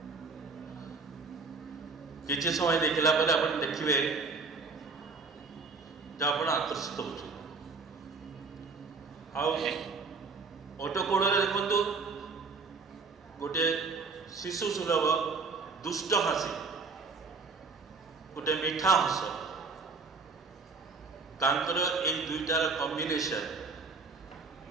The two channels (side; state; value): left; quieter; 4.3 dB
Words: কিছু সময় দেখিলা পরে আপনি দেখবে যে আপনার আকর্ষিত হচ্ছেন। ওটো কোড়ে দেখুন গোটে শিশু সুলভ দুষ্ট হাসি, গোটে মিঠা হস। ତାଙ୍କର ଏଇ ଦୁଇଟାର କମ୍ବିନେସନ